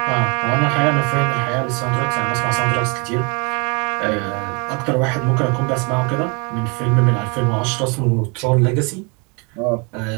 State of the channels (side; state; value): left; quieter; 31.6 dB